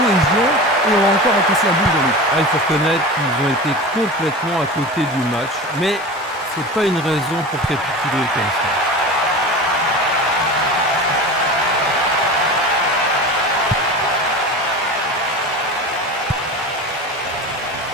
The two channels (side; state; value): both; normal; correlation 0.30